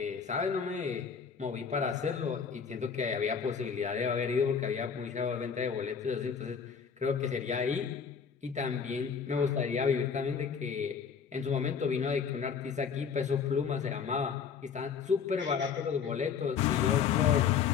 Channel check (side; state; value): right; quieter; 6.6 dB